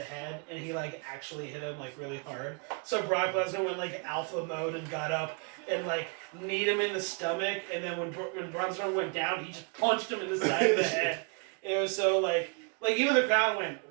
head, and he like actually hit him like really hard. So Brock Lesnar went like alpha mode and got up and like kneed him in the stomach, and then when Braun Strowman went down, he just punched him in the side of the head. It was so like even the crowd went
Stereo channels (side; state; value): left; quieter; 35.4 dB